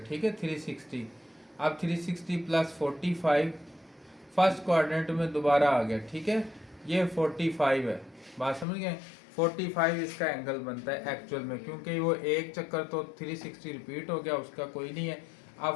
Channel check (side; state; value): right; drops out; at 8.7 s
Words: है, 360। अब 360 प्लस 45 फर्स्ट क्वाड्रेंट में दोबारा आ गया। ठीक है, ये 45 है, बात समझ गए। 45 इसका एंगल बनता है एक्चुअल में, क्योंकि वो एक चक्कर तो 360 रिपीट हो गया, उसका कोई नहीं है।